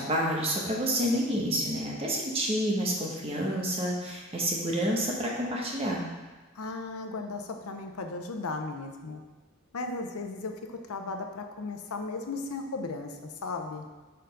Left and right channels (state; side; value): normal; both; correlation 0.36